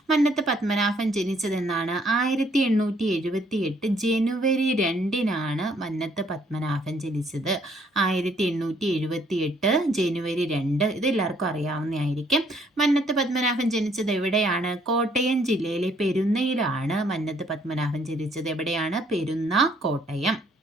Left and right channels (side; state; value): both; normal; correlation 0.65